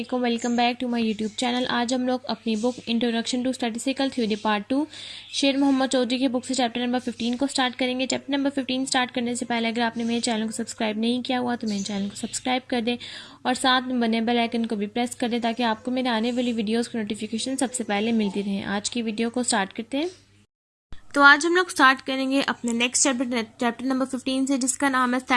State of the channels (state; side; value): identical; both; correlation 1.00